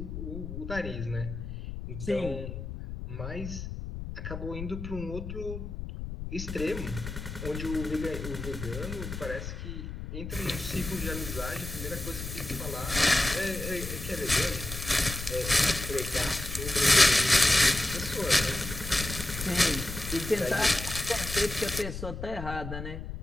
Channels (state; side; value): noise; left; rumble, 7 dB below the sound